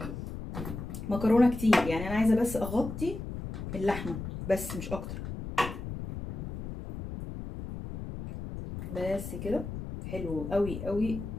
مكرونه كتير؟ يعني انا عايزه بس اغطي اللحمه بس مش اكتر. بس كده حلو قوي قوي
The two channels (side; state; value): left; noise; rumble, 7 dB below the sound